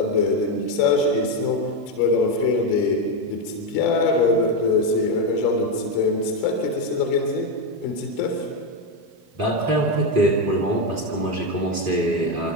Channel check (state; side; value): late; left; 3.7 ms